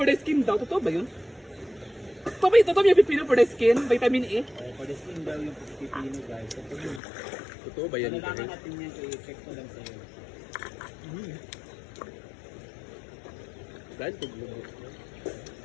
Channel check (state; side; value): drops out; right; at 7.0 s